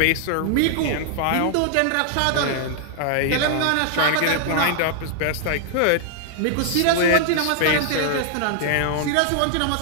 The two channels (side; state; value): both; different; correlation 0.00